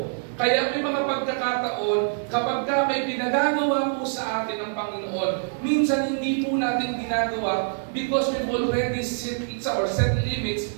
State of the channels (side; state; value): left; silent; digital silence